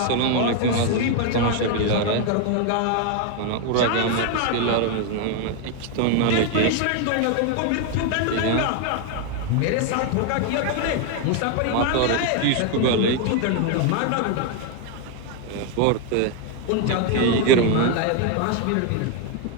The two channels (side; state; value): both; different; correlation 0.01